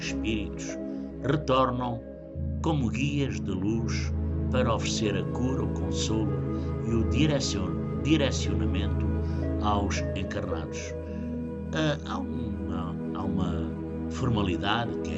retornam como guias de luz para oferecer a cura, o consolo e o direcionamento aos encarnados. Há uma formalidade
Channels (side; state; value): both; identical; correlation 1.00